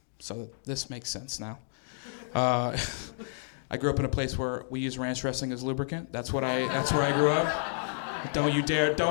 so this makes sense now. I grew up in a place where we use ranch dressing as lubricant. That's where I grew up. Don't you dare,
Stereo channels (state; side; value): silent; right; digital silence